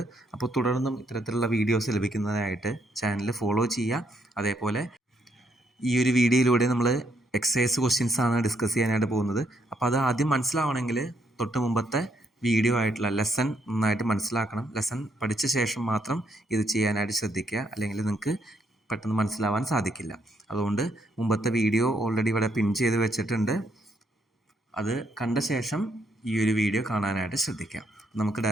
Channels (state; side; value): normal; both; correlation 0.74